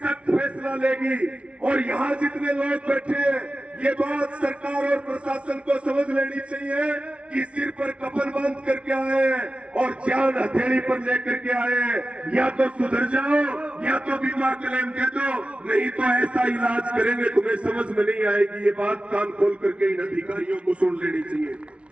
फैसला लेगी, और यहाँ जितने लोग बैठे हैं, ये बात सरकार और प्रशासन को समझ लेनी चाहिए कि सिर पर कफन बांध करके आए हैं और जान हथेली पर लेकर के आए हैं। या तो सुधर जाओ, या तो बीमा क्लेम दे दो, नहीं तो ऐसा इलाज करेंगे तुम्हें समझ में नहीं आएगी। ये बात कान खोल करके इन अधिकारियों को सुन लेनी चाहिए।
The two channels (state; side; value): late; left; 0.061 ms